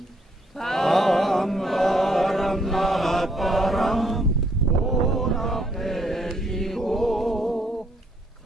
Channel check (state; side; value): normal; both; correlation 0.69